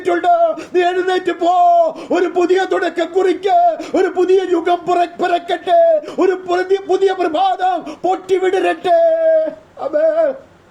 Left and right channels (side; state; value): both; identical; correlation 1.00